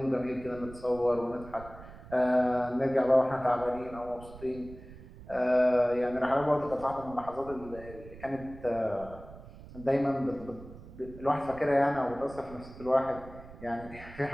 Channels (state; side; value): noise; right; rumble, 17 dB below the sound